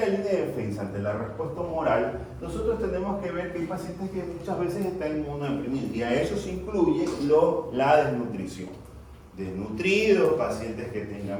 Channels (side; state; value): both; identical; correlation 1.00